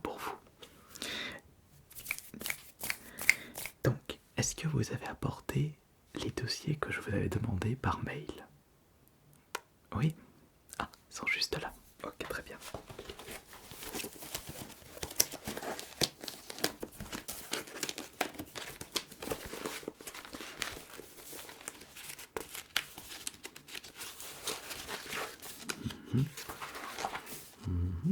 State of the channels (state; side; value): identical; both; correlation 1.00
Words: vous. Donc, est-ce que vous avez apporté les dossiers que je vous avais demandés par mail? Oui? Ah, ils sont juste là. Ok, très bien.